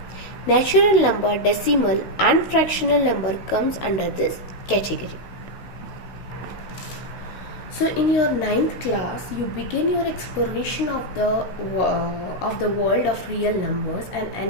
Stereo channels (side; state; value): right; late; 16 ms